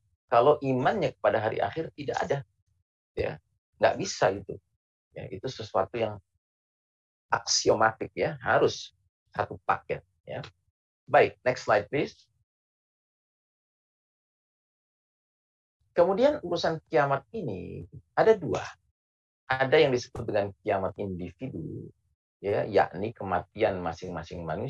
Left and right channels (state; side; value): identical; both; correlation 1.00